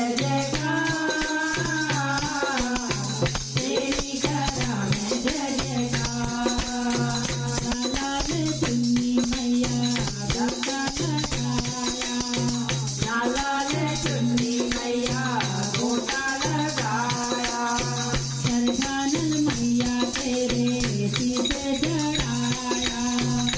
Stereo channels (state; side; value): identical; both; correlation 1.00